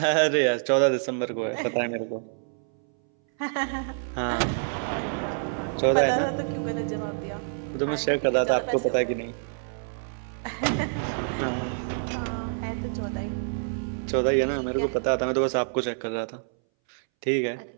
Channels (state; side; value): silent; left; 60 dB below the other